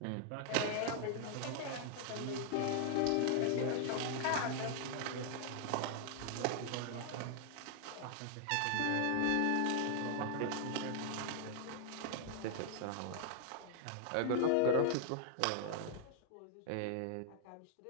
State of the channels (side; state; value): both; different; correlation 0.00